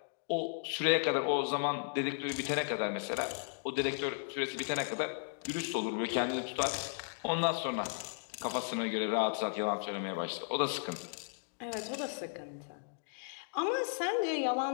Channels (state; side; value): silent; right; digital silence